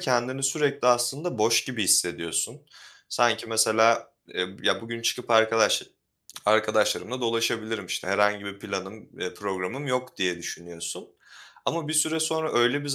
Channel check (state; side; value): identical; both; correlation 1.00